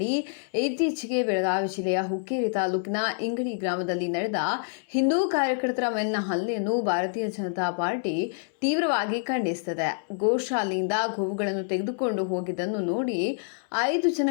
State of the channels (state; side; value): silent; right; 60 dB below the other